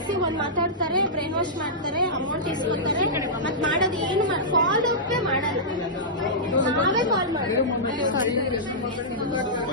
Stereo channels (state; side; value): normal; both; correlation -0.13